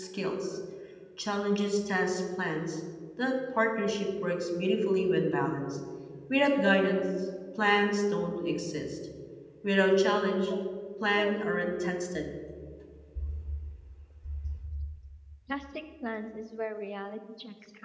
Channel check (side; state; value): both; identical; correlation 1.00